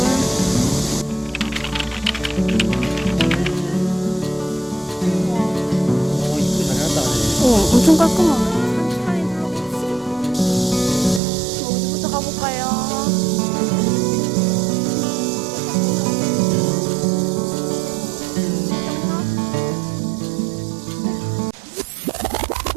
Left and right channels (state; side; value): drops out; left; at 11.2 s